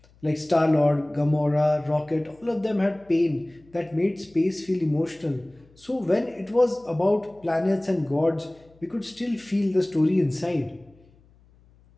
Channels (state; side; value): noise; left; hum, 29 dB below the sound